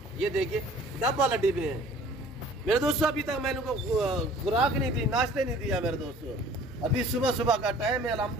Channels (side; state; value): both; normal; correlation 0.50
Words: ये देखिए डबल हड्डी में है मेरे दोस्तों। अभी तक मैंने उनको खुराक नहीं दी, नाश्ते नहीं दिया मेरे दोस्तों। अभी सुबह का टाइम है